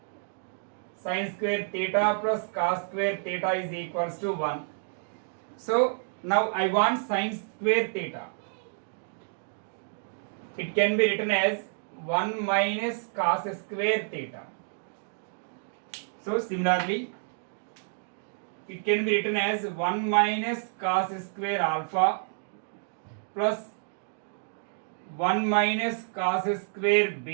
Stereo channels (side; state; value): left; silent; digital silence